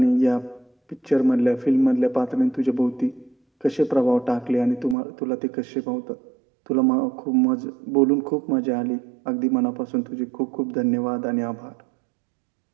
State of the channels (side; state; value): left; drops out; at 5.0 s